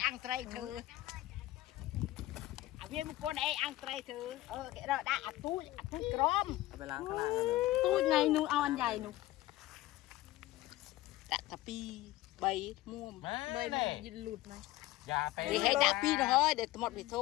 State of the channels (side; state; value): right; quieter; 16.7 dB